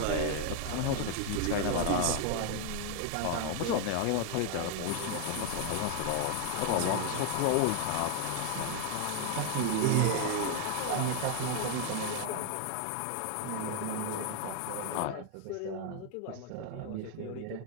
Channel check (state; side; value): different; both; correlation 0.00